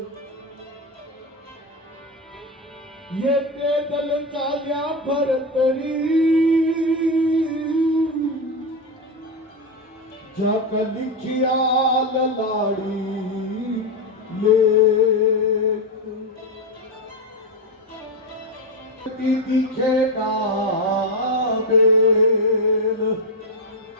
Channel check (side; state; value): both; normal; correlation 0.10